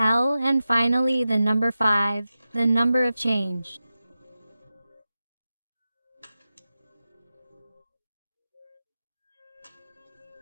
and finally the number 5, the number of change.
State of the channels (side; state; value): both; inverted; correlation -0.93